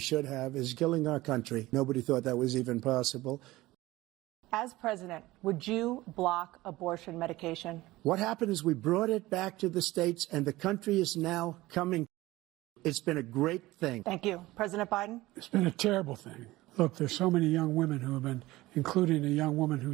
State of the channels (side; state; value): left; quieter; 18.4 dB